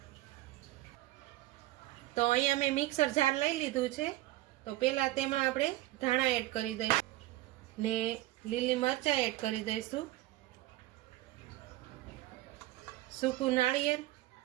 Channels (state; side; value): quieter; left; 16.9 dB